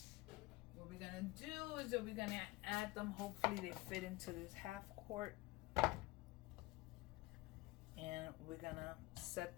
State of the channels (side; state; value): right; quieter; 20.6 dB